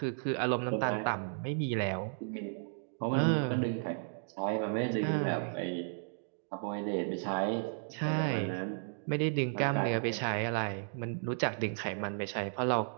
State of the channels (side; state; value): left; silent; digital silence